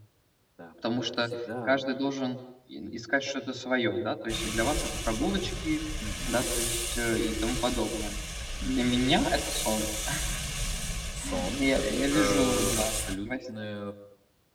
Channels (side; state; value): both; identical; correlation 1.00